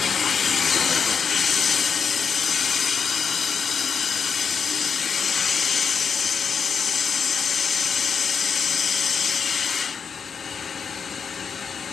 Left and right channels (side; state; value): right; quieter; 6.3 dB